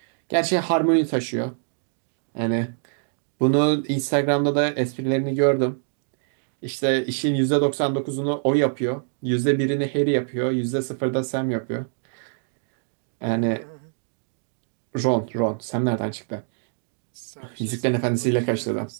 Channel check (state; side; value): silent; left; digital silence